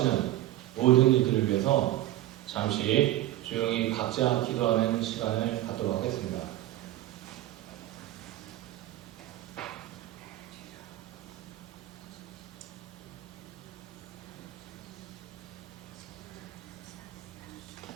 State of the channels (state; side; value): quieter; left; 14.9 dB